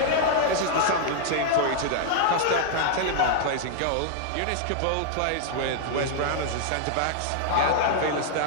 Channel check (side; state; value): both; different; correlation -0.01